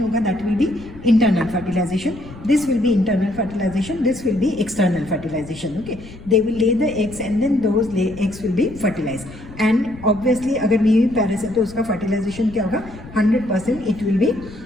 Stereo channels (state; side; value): noise; left; rumble, 17 dB below the sound